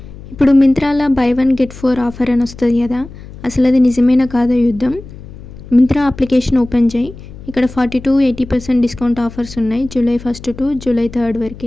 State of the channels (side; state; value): left; noise; hum, 16 dB below the sound